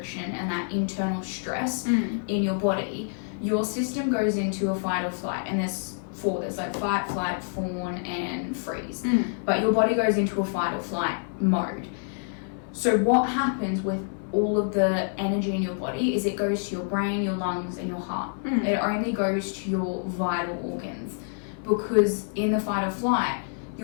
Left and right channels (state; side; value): silent; right; 60 dB below the other